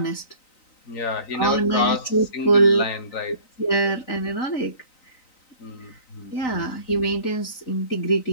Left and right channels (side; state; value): right; late; 3.9 ms